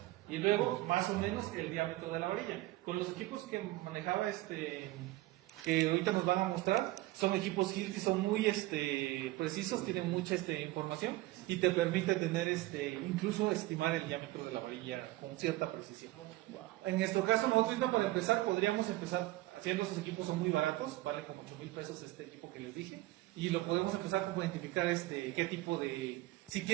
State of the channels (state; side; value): quieter; left; 18.1 dB